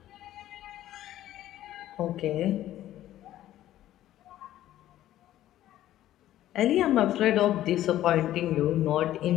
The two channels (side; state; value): right; quieter; 13.4 dB